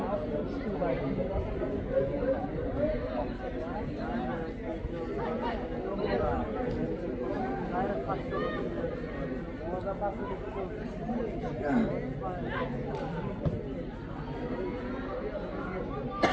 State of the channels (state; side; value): identical; both; correlation 1.00